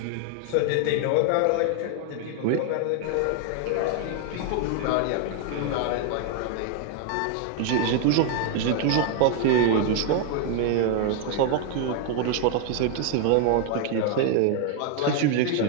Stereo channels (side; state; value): both; different; correlation 0.00